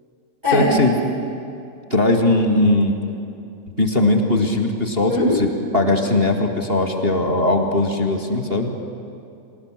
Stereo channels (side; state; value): left; late; 2.8 ms